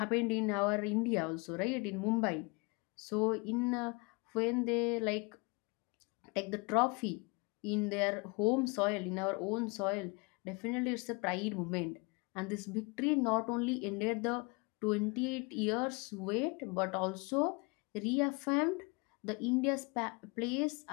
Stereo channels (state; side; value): quieter; right; 29.6 dB